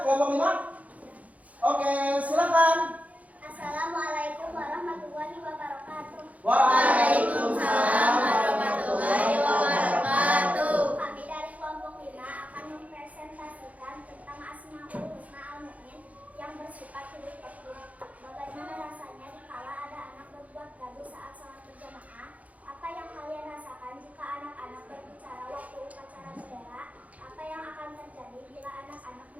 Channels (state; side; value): late; left; 0.070 ms